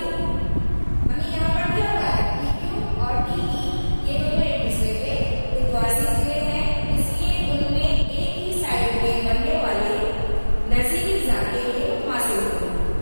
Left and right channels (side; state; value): both; inverted; correlation -1.00